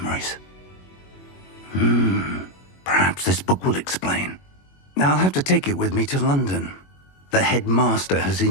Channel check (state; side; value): late; right; 21 ms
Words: Perhaps this book will explain. I'll have to take it with me to London. The headmaster has